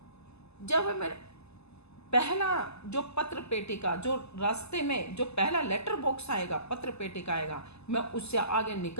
जब मेरे पहला जो पत्र पेटी का, जो रास्ते में जो पहला लेटर बॉक्स आएगा, पत्र पेटी का आएगा, मैं उससे आगे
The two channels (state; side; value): late; right; 0.79 ms